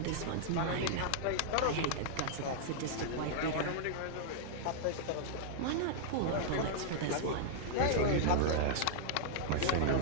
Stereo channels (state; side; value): different; both; correlation -0.01